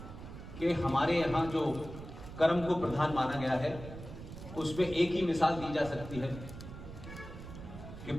कि हमारे यहाँ जो कर्म को प्रधान माना गया है उसमें एक ही मिसाल दी जा सकती है कि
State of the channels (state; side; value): noise; right; rumble, 12 dB below the sound